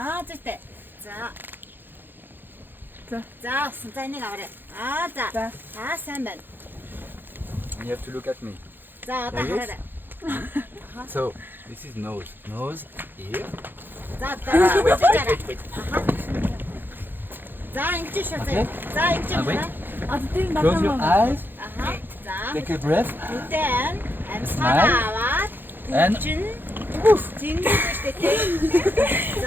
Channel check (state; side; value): late; left; 0.096 ms